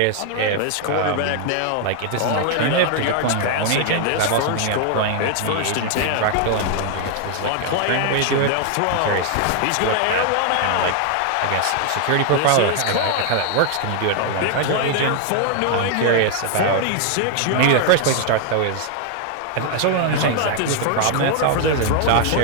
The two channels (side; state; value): both; different; correlation 0.00